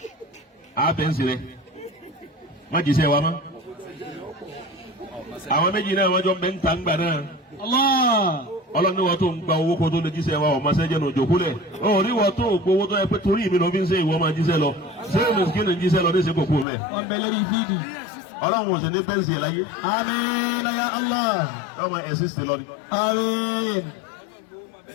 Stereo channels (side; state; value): right; drops out; at 16.7 s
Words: àbẹ̀nsì rẹ̀ má jíṣẹ́ wa mọ́. Àwọn méjì náà wọ́n jọ ń bẹ ń ta ń gbà náà. Ọlọ́run ní wọ́n tó ń gba owó kó tó lè jíṣẹ́ wa ọ̀ma sẹ́jẹ̀ náà jòkó lẹ̀. Ó ní wọ́n tó gbowó tó yẹ pé torí mi ló fi ń ṣe ìwọ máa jíṣẹ́ lọ. Ṣé o mùsùlùmí ní jíṣẹ́ lọ ní ìṣe kòkó mẹ́? Wọ́n bẹ lórí fídì. Ọlọ́run ò sì ní bẹ́ǹsì ẹ̀ láyé. Àmín ya Allah. Ọmọ ẹ̀sìn sì lọ ni. Àmín.